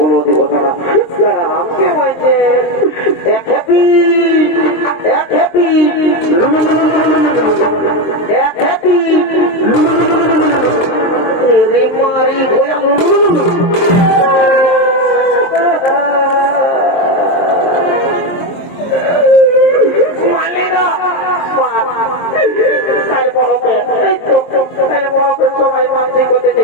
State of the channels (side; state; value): right; late; 23 ms